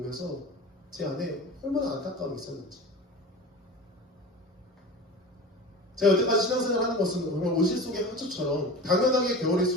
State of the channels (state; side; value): normal; both; correlation 0.34